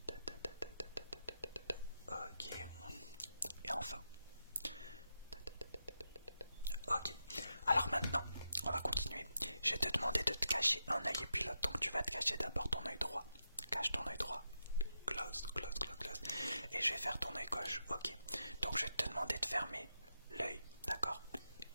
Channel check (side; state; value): both; inverted; correlation -0.86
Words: ok. Et enfin, ok. Alors maintenant, on va continuer. Je vais te demander de te cacher un œil et puis l'autre. Donc tu vas te cacher d'abord ton œil droit. Cache ton œil droit. Close, close, close, close. Et je vais faire ton œil gauche. Ok. Donc je vais te demander de fermer l'œil. D'accord?